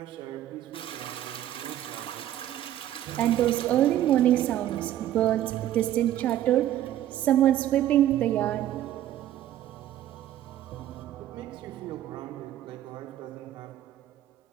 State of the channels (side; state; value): left; quieter; 12.4 dB